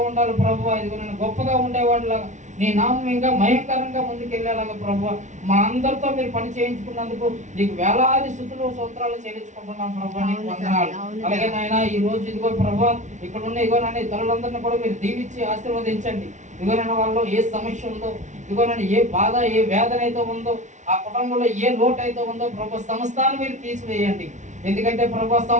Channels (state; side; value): late; left; 0.35 ms